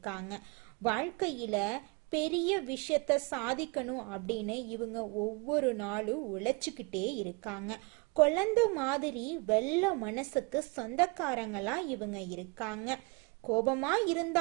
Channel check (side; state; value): left; quieter; 28.2 dB